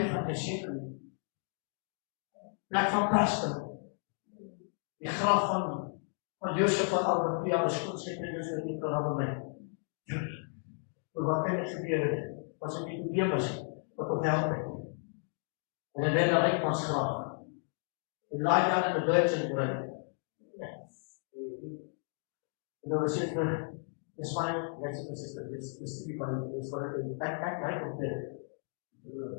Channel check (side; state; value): right; silent; 55 dB below the other